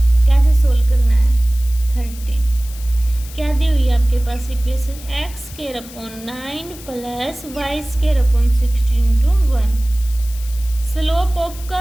कैसे सोल्व करना है। 13 क्या दी हुई है आपके पास equation, x² plus y² 16 to 1। Slope of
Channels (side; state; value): left; noise; hiss, 17 dB below the sound